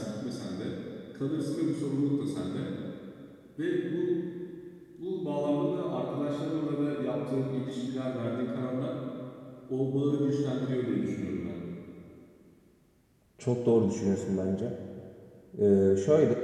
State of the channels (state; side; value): identical; both; correlation 1.00